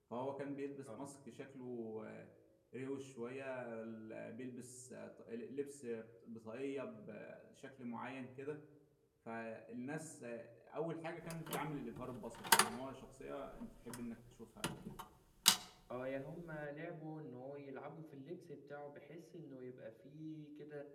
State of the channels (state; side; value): identical; both; correlation 1.00